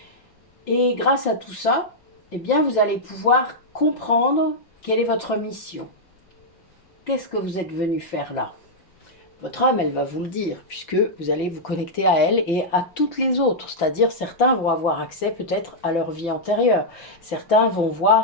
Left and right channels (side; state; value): right; late; 5.9 ms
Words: Et grâce à tout ça, eh bien, vous allez pouvoir comprendre quelle est votre mission. Qu'est-ce que vous êtes venu faire là? Votre âme, elle va vous le dire, puisque vous allez vous connecter à elle et à toutes les autres. C'est-à-dire, certains vont avoir accès peut-être à leur vie antérieure. Certains vont